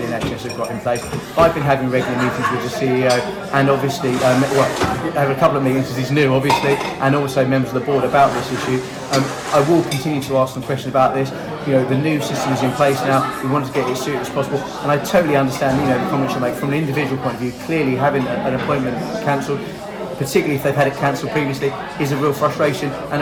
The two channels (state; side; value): identical; both; correlation 1.00